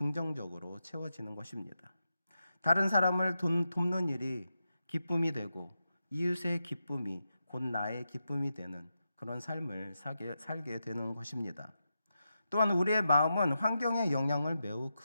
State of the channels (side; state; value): both; inverted; correlation -0.88